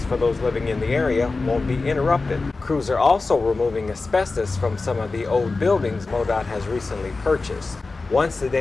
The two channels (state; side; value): quieter; right; 3.7 dB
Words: for those living in the area won't be interrupted. Crews are also removing asbestos from some of the old buildings MoDOT has recently purchased. Once the